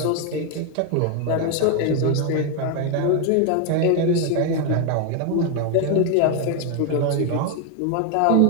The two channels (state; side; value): different; both; correlation 0.01